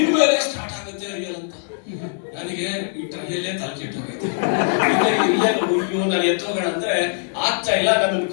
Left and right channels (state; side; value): silent; right; 65 dB below the other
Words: ಸ್ಟಾರ್ಟ್ ಆಗುತ್ತೆ ರಿಯಲ್ ಅಂತ. ನನಗೆ ಈ ಟ್ರಯಲ್ಲೇ ತಲೆ ಕೆಟ್ಟೋಗೈತೆ. ರಿಯಲ್ ಅಯ್ಯೋ ನಾನು ಎತ್ತೋಗೋಣ ಅಂದ್ರೆ ಆಗ್ತಾ ಇಲ್ಲ. ನನ್ನನ್ನು